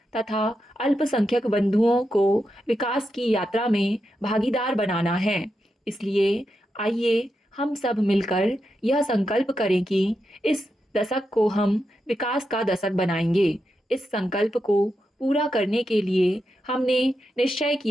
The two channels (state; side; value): normal; both; correlation 0.87